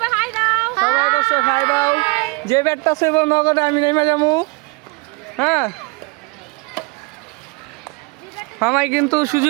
সবাই দর্শক হাই দাও। যে ব্যাটটা সইব নগদে আমি নেমে যাবো। হ্যাঁ, মামাই কিন্তু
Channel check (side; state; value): left; quieter; 29.2 dB